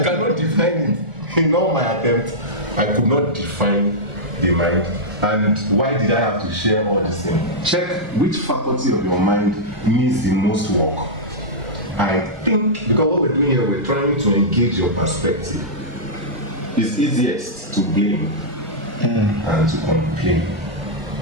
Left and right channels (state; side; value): late; left; 1.4 ms